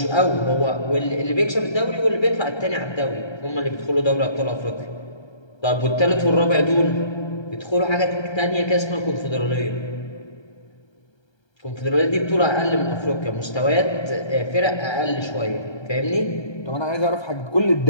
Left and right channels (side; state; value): right; late; 1.3 ms